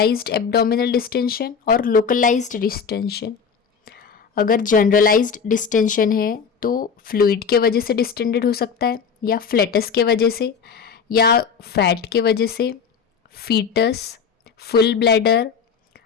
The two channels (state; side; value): quieter; right; 6.3 dB